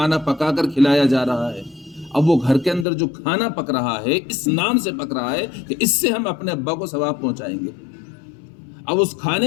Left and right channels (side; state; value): right; drops out; at 2.9 s